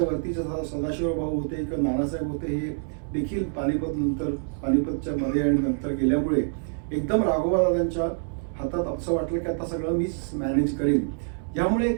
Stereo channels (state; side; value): silent; left; 61 dB below the other